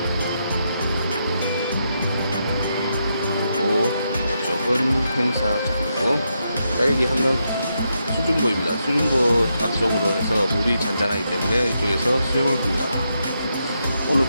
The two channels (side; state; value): both; inverted; correlation -0.82